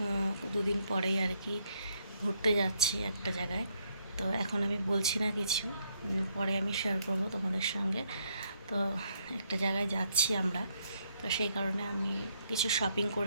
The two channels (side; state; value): both; inverted; correlation -0.73